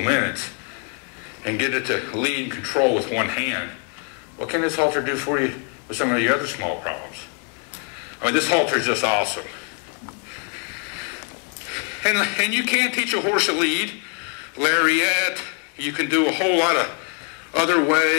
and get it to lead and control with one hand, what can this halter do for you with some of your other small problems? I mean, this halter is just awesome. And you can teach a horse to lead, lariat. You can do a whole lot of other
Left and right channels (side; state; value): right; quieter; 33.6 dB